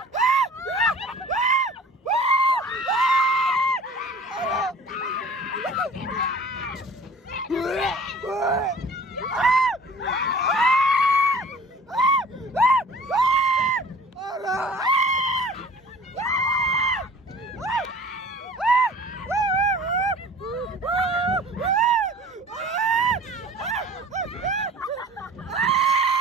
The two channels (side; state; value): both; normal; correlation 0.46